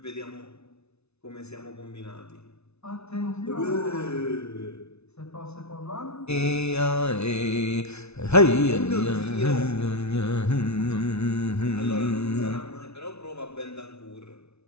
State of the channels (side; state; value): right; late; 0.80 ms